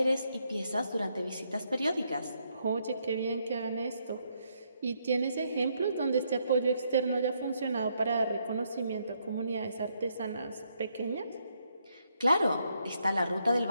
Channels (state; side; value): inverted; both; correlation -0.75